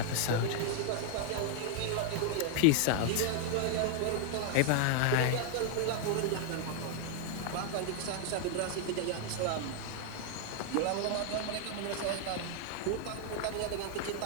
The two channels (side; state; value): both; different; correlation 0.00